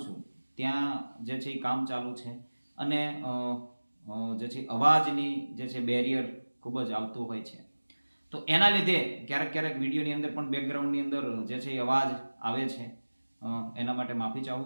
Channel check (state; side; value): inverted; both; correlation -1.00